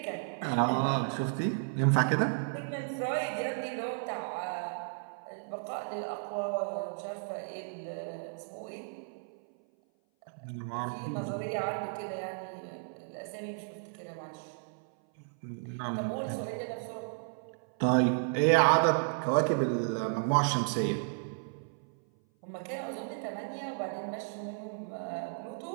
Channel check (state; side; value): silent; left; 55 dB below the other